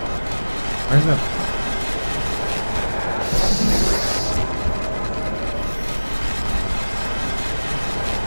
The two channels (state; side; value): inverted; both; correlation -1.00